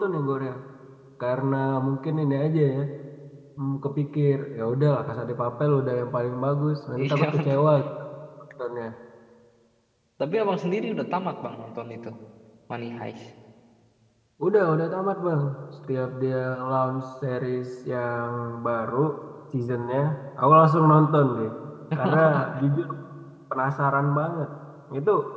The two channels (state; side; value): identical; both; correlation 1.00